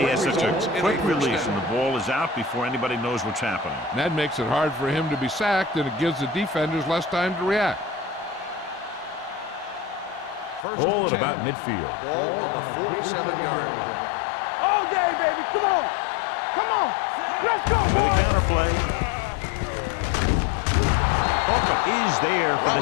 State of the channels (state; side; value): drops out; right; at 10.7 s